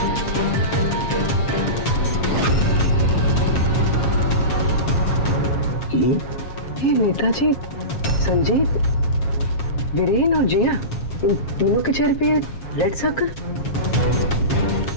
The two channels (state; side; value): late; right; 7.4 ms